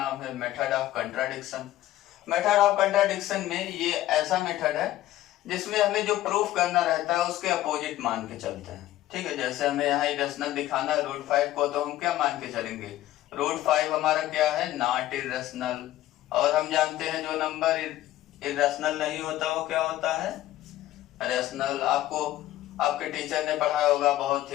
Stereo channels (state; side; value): quieter; right; 14.7 dB